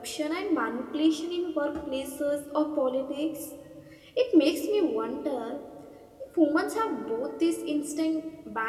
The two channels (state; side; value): identical; both; correlation 1.00